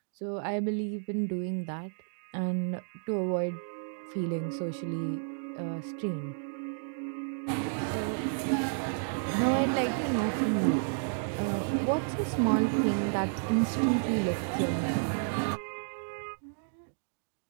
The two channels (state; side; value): silent; left; digital silence